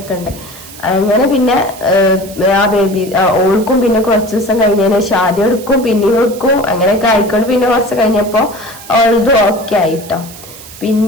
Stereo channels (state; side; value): noise; right; hiss, 17 dB below the sound